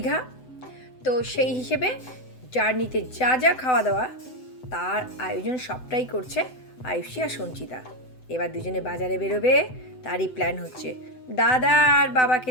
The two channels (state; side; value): late; right; 7.9 ms